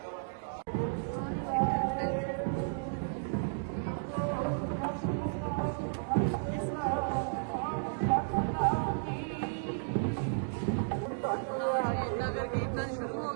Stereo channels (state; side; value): silent; left; digital silence